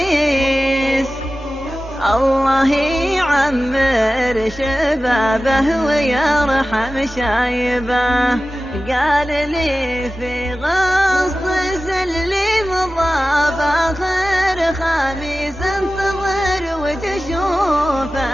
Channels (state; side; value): normal; both; correlation 0.95